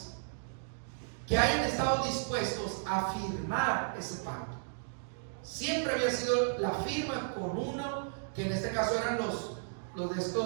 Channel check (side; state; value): left; silent; digital silence